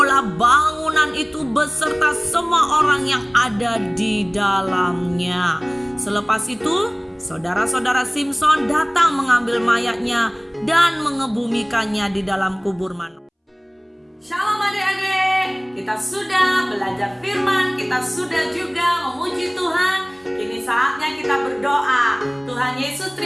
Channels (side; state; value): both; identical; correlation 1.00